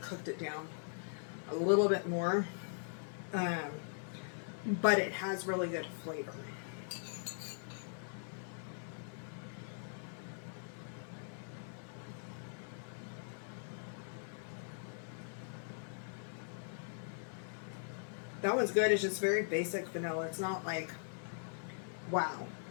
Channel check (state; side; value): silent; right; 51 dB below the other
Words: cooked it down a little bit more. But it has really good flavor. That one's good. It's just very basic vanilla. It's not like, wow.